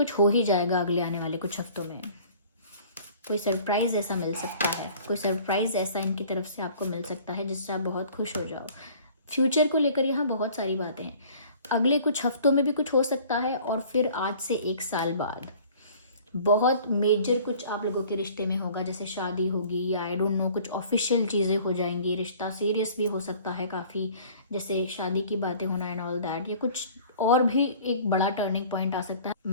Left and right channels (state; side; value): inverted; both; correlation -0.50